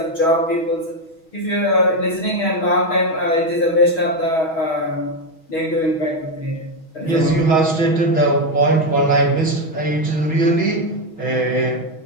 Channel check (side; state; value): right; late; 6.3 ms